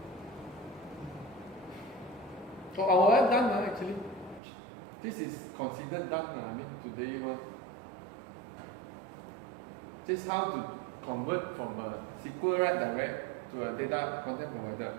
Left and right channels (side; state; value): left; drops out; at 4.4 s